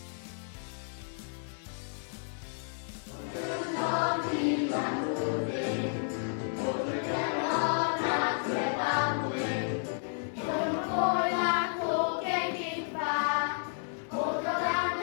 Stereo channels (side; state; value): right; silent; digital silence